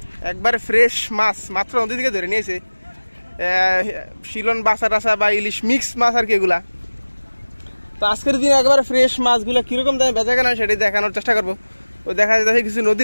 একবারে ফ্রেশ মাছ মাত্র নদী থেকে ধরে নিয়েছে। শিলন বাসা টাসা বা ইলিশ মিক্স মাছ আর কি এগুলা। তো আজকের দিনে একবারে ফ্রেশ মাছগুলো কীরকম দামে বেচাকেনা হয় সেটাই দেখানোর চেষ্টা করবো। ও দেখা যাচ্ছে কিছু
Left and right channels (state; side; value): inverted; both; correlation -1.00